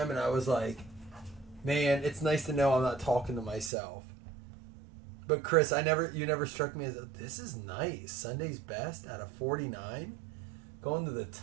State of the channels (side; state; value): left; drops out; at 3.7 s